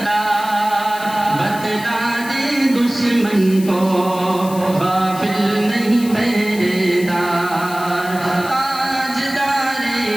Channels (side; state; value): left; noise; hiss, 15 dB below the sound